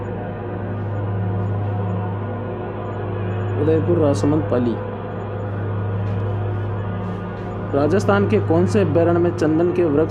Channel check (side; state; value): both; identical; correlation 1.00